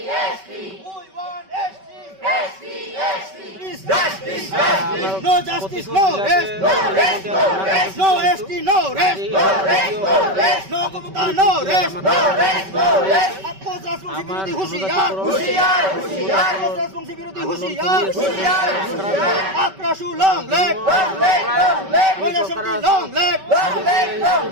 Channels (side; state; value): left; late; 5.2 ms